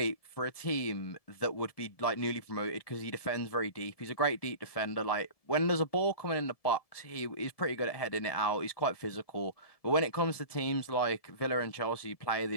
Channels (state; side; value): late; right; 1.7 ms